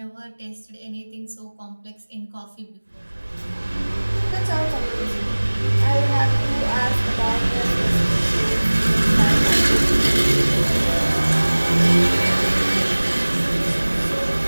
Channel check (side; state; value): both; inverted; correlation -1.00